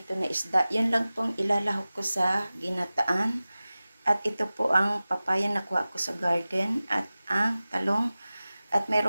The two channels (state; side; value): inverted; both; correlation -0.97